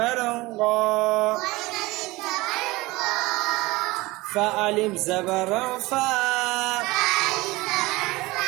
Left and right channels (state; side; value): quieter; left; 21.2 dB